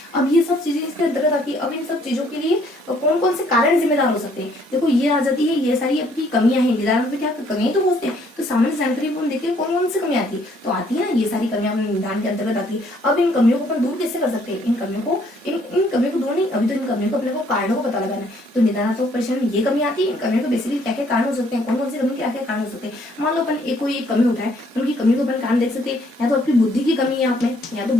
अब ये सब चीजें इसके अंतर्गत आती है। अब इन सब चीजों के लिए कौन कौन से कारण जिम्मेदार हो सकते हैं, देखो ये आ जाती है, ये सारी आपकी कमियां हैं। निदान में क्या कमियां तो होते हैं, तो सामान्य जानकारी को हम देखते हैं कौन कौन सी कमियां आती है, तो आती है ना ये सारी कमियां अपने निदान के अंतर्गत आती है। अब इन कमियों को अपन दूर कैसे कर सकते हैं, इन कमियों को दूर नहीं, अभी तो इन कमियों को अपने को कारणों को पता लगाना है। तो निदानात्मक परिश्रम में ये कमी आती है, इन कमियों को बेसिकली क्या क्या कारण हो सकते हैं, कौन कौन सी कमी क्या क्या कारण हो सकते हैं। मान लो अपन कोई एक कमी उठाए, उनकी कमी को अपन कारण देख सकते हैं, या तो आपकी बुद्धि की कमी है, आपने या तो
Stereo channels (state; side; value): normal; both; correlation 0.64